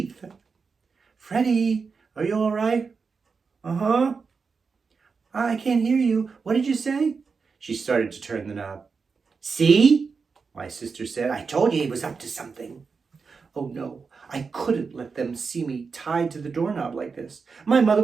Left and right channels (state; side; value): quieter; left; 5.1 dB